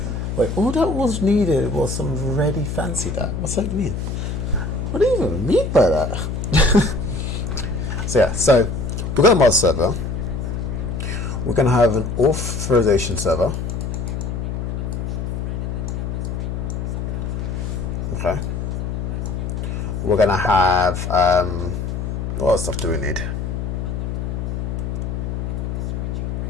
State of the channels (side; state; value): left; noise; hum, 3 dB below the sound